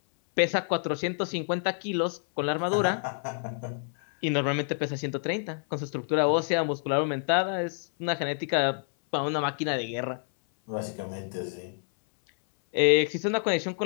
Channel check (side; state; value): right; silent; 59 dB below the other